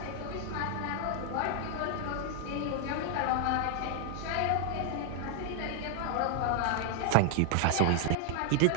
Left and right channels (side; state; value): both; different; correlation 0.00